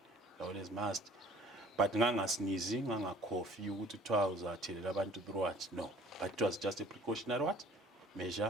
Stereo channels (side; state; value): both; normal; correlation 0.52